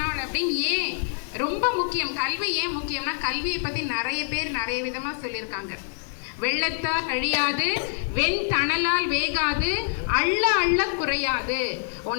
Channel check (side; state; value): right; silent; digital silence